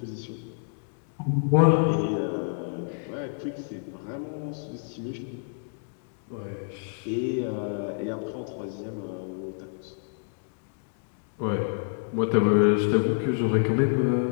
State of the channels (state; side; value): silent; right; digital silence